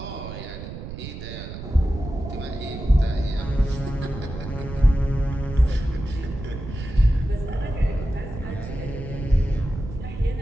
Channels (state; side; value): noise; right; rumble, 9 dB below the sound